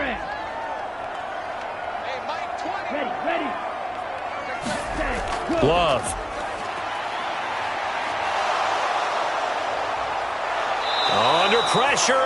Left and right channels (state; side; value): identical; both; correlation 1.00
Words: Hey, Mike, 20. Ready. Love. Under pressure,